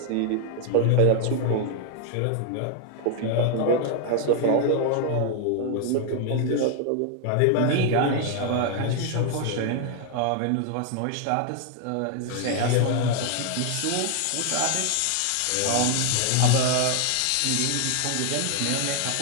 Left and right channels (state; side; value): different; both; correlation 0.00